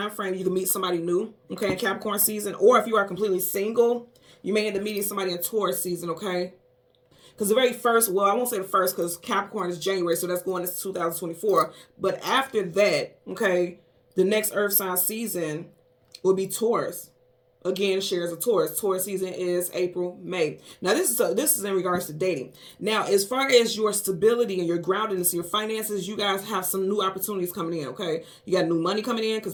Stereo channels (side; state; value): both; identical; correlation 1.00